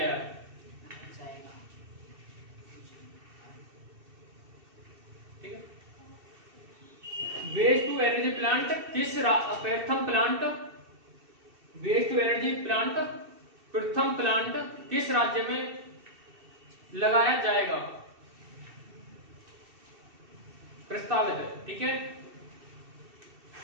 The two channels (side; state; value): left; late; 2.7 ms